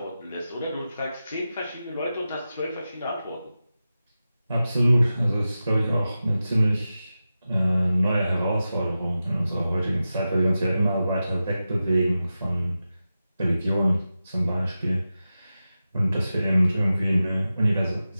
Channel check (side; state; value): both; inverted; correlation -0.93